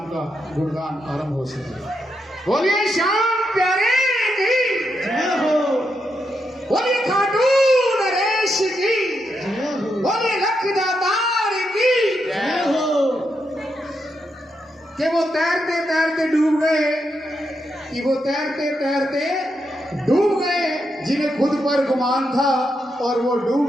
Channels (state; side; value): normal; both; correlation 0.83